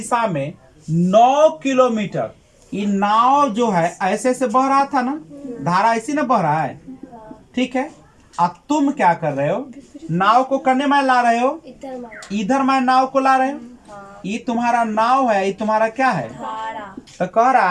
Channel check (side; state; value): both; identical; correlation 1.00